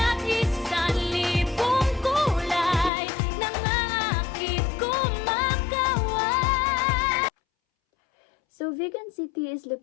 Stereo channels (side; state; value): right; drops out; at 2.9 s